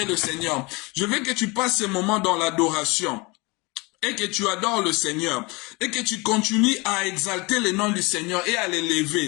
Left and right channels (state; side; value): quieter; right; 26.0 dB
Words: le Seigneur. Je veux que tu passes ce moment dans l'adoration. Et que tu adores le Seigneur. Et que tu continues à exalter le nom du Seigneur et à